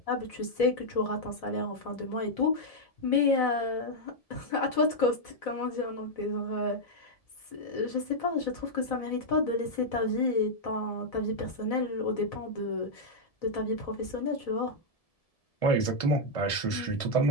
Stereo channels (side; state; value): right; late; 1.7 ms